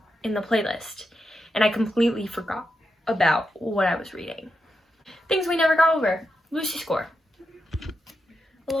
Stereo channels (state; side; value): normal; both; correlation 0.86